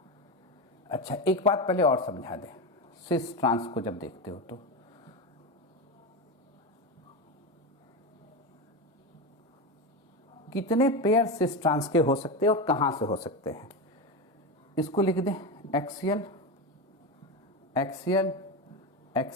अच्छा एक बात पहले और समझा दें, सिस ट्रांस को जब देखते हो तो कितने पेयर सिस ट्रांस के हो सकते हैं और कहाँ से हो सकते हैं, इसको लिख दें, axial axial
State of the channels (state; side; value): normal; both; correlation 0.17